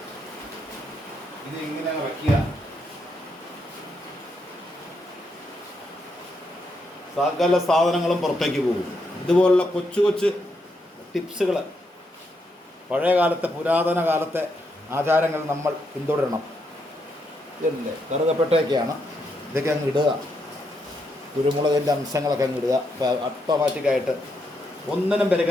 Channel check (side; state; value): both; normal; correlation 0.79